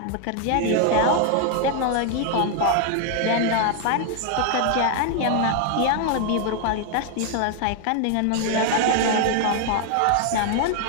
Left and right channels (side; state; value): both; different; correlation 0.00